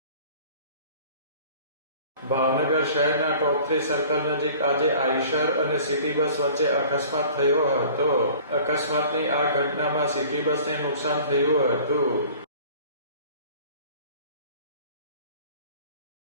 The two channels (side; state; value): both; inverted; correlation -0.47